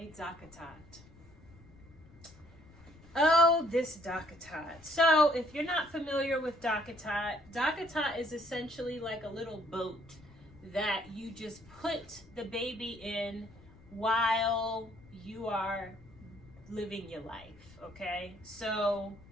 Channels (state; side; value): noise; left; rumble, 23 dB below the sound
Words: Dockatot. Oh, this Dockatot. So if you're not familiar with Dockatot, Dockatot is essentially like a little boat that you just put the baby in while you are living your life, okay? So